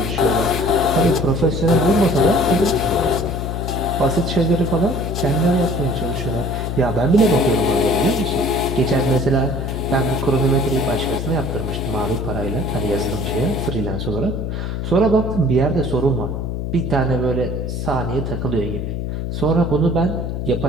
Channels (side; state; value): left; noise; hum, 3 dB below the sound